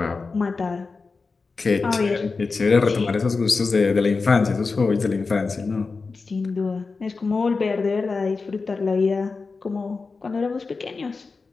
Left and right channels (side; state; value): right; quieter; 4.3 dB